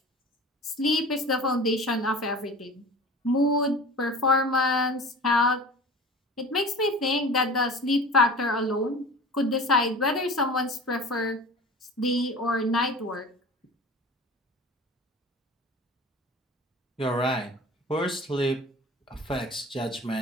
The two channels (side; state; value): both; normal; correlation 0.38